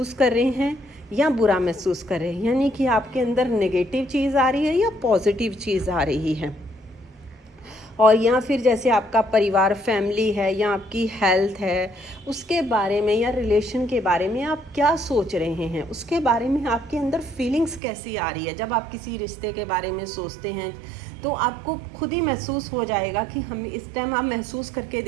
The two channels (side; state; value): left; drops out; at 17.8 s